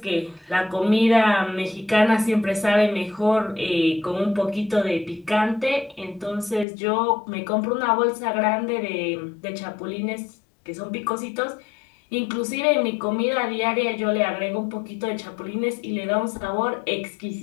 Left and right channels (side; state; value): right; drops out; at 6.7 s